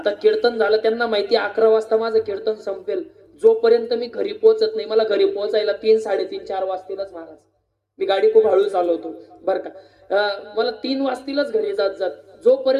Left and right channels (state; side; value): identical; both; correlation 1.00